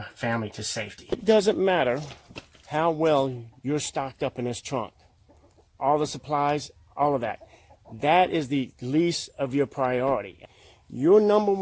family to safety. It doesn't matter how well you're stocked up in this trunk. All the supplies, all of that. That is the least of your priority. Your number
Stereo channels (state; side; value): identical; both; correlation 1.00